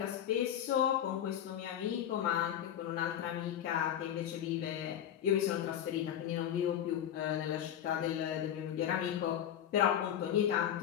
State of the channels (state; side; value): quieter; right; 10.1 dB